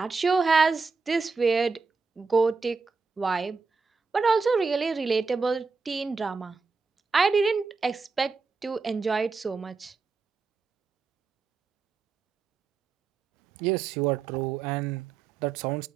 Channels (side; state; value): left; quieter; 4.7 dB